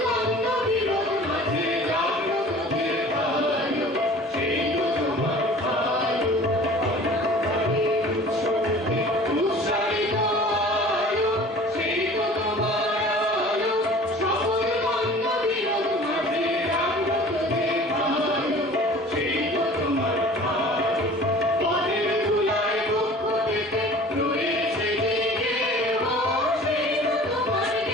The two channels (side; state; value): both; normal; correlation 0.45